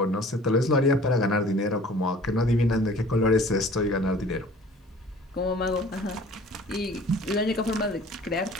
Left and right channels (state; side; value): normal; both; correlation 0.49